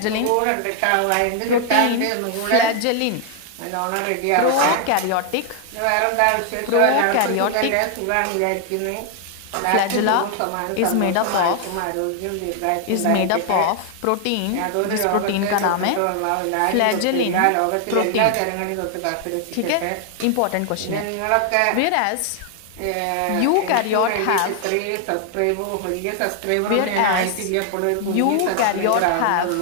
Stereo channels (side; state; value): both; different; correlation 0.00